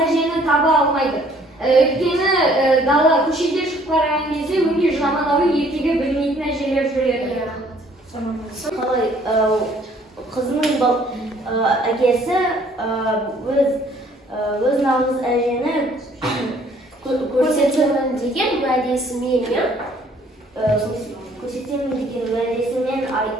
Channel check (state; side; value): normal; both; correlation 0.60